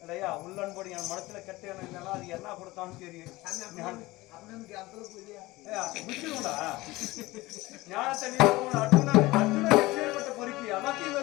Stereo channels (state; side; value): quieter; right; 20.0 dB